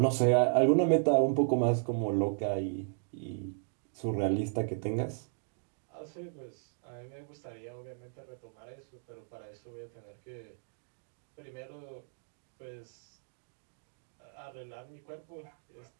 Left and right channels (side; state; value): left; silent; digital silence